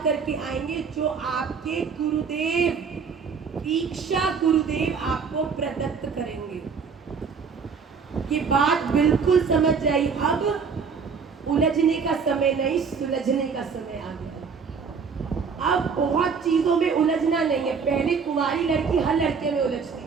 करके आएंगे जो आपके गुरुदेव, दीक्षा गुरुदेव आपको प्रदत्त करेंगे। ये बात बिल्कुल समझ जाइए। अब उलझने का समय नहीं, सुलझने का समय आ गया। अब बहुत चीजों में उलझना नहीं है। पहले कुंवारी लड़की हर लड़के में उलझती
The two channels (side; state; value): left; quieter; 5.7 dB